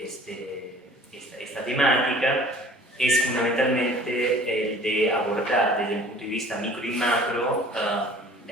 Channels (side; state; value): both; normal; correlation 0.48